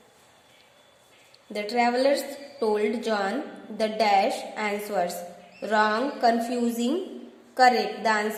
the travelers told John the dash answers wrong, confusing, correct, the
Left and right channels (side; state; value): both; identical; correlation 1.00